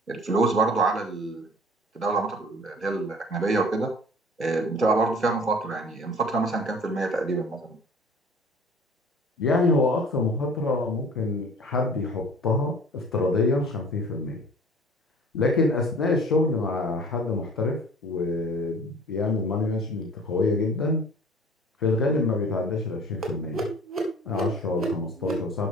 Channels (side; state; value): both; normal; correlation 0.47